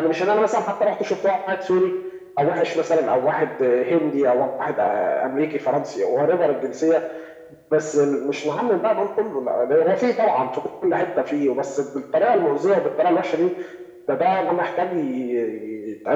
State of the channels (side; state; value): both; identical; correlation 1.00